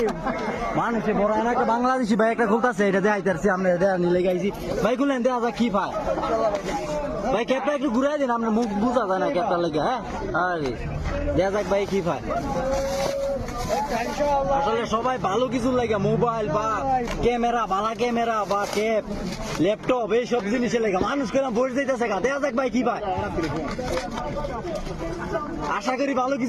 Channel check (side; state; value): both; identical; correlation 1.00